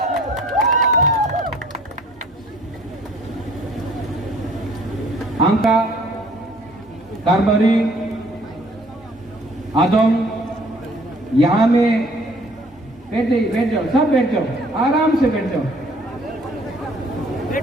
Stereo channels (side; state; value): both; normal; correlation 0.56